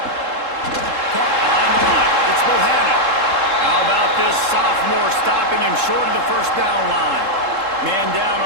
Caught behind the line. It's Bohannon. How about this sophomore stopping him short of the 1st down line? Man down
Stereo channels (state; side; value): late; left; 3.7 ms